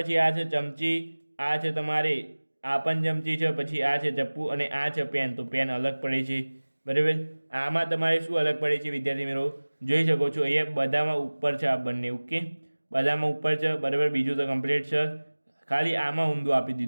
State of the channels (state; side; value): inverted; both; correlation -1.00